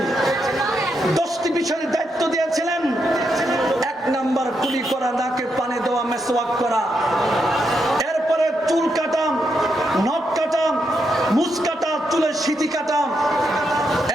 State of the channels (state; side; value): normal; both; correlation 0.82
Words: 10টি বিষয়ের দায়িত্ব দিয়েছিলেন। 1 নাম্বার, কুলি করা, নাকে পানি দেওয়া, মেসওয়াক করা। এরপরে চুল কাটা, নখ কাটা, মুছ কাটা, চুলের সিঁথি কাটা।